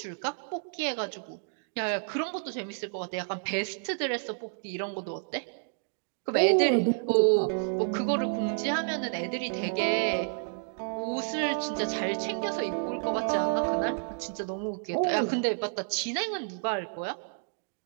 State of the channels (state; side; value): silent; left; digital silence